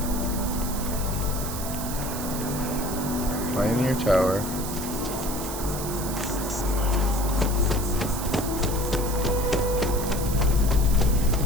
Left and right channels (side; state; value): right; noise; hiss, 8 dB below the sound